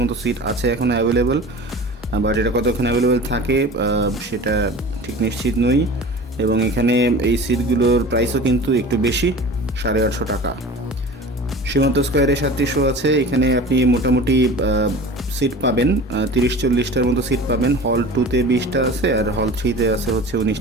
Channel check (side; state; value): both; normal; correlation 0.38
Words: সিট আছে এখনও অ্যাভেলেবল, বাট এটা কতক্ষণ অ্যাভেলেবল থাকে সেটা ঠিক নিশ্চিত নই। এবং এখানে এই সিটগুলোর প্রাইসও কিন্তু একটু বেশি, 850 টাকা। সীমান্ত স্কোয়ারে 7টি শো আছে, এখানে আপনি মোটামুটি সিট পাবেন 30-40টার মতো সিট পাবেন। হল 2-তে 20টা আছে আর হল 3-তে আছে হচ্ছে